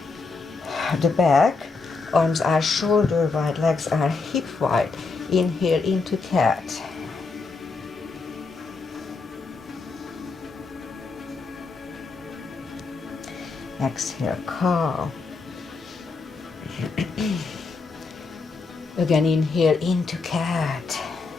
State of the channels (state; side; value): quieter; right; 4.2 dB